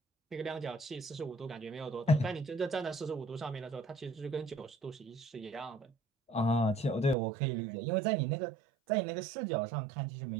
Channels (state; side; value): drops out; left; at 7.2 s